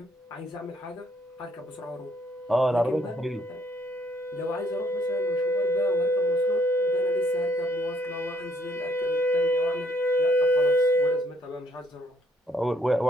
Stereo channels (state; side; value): normal; both; correlation 0.68